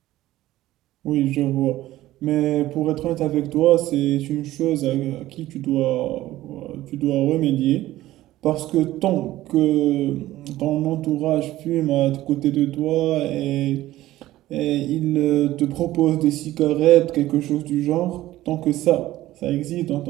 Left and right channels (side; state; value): left; quieter; 15.5 dB